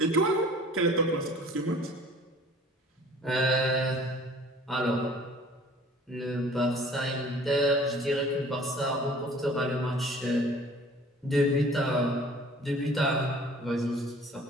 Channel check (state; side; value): normal; both; correlation 0.50